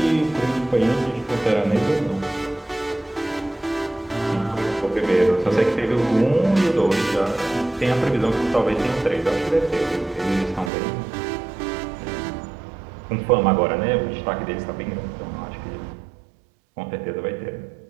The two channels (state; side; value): drops out; left; at 10.7 s